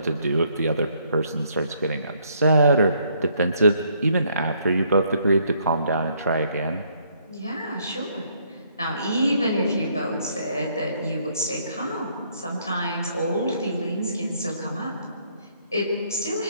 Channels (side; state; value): both; inverted; correlation -0.68